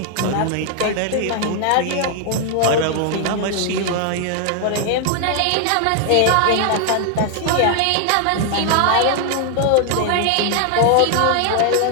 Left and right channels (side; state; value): both; different; correlation 0.00